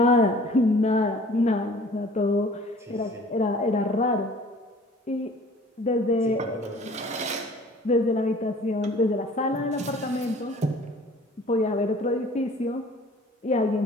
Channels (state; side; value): normal; both; correlation 0.50